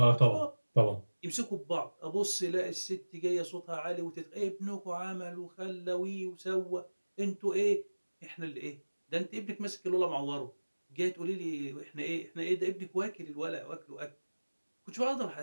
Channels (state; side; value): inverted; both; correlation -1.00